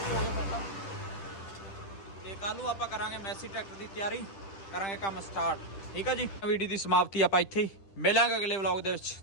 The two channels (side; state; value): right; late; 10 ms